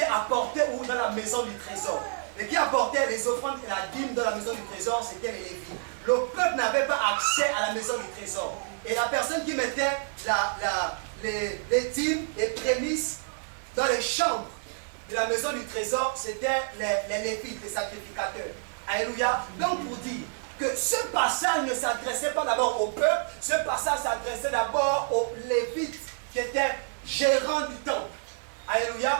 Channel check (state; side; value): silent; left; digital silence